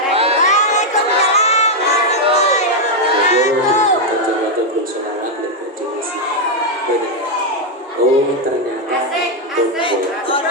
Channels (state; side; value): normal; both; correlation 0.00